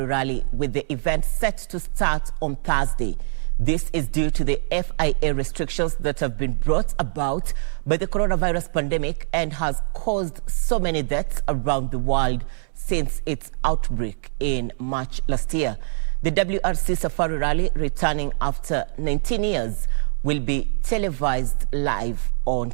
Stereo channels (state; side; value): silent; left; digital silence